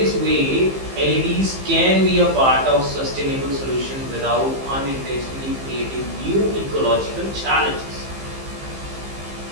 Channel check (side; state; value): left; late; 15 ms